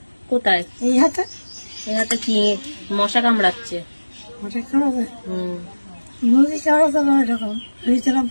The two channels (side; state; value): both; inverted; correlation -1.00